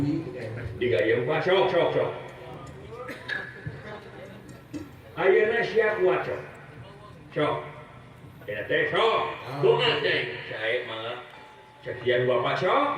Digayung Pak, sok. Ayeuna sia kuat sok. Sok. Ya teh sok. Doa teh. Sae mah sekian Bapak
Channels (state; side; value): identical; both; correlation 1.00